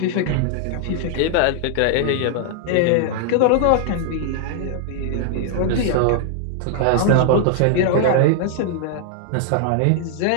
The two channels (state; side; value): different; both; correlation 0.00